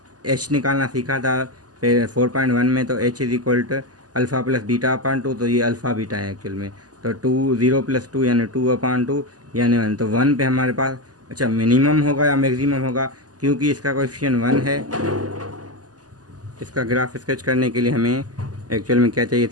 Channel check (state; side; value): late; left; 0.68 ms